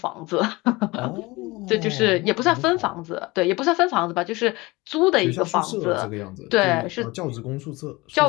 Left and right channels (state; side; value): quieter; right; 22.5 dB